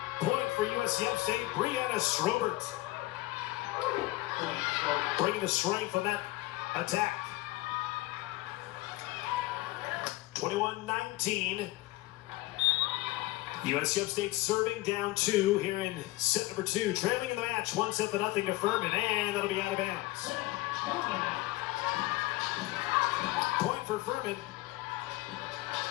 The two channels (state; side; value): quieter; right; 19.5 dB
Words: point for USC Upstate. Brianna Schroeder bringing the strength on that attack. 21-19. USC Upstate serving down 2 here in set number 2. Trailing in the match, 1-0 to Furman, and that'll be out of bounds. Point for Furman.